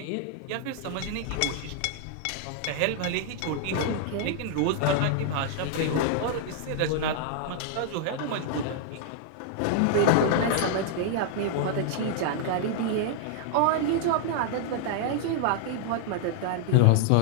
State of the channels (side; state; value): both; different; correlation -0.01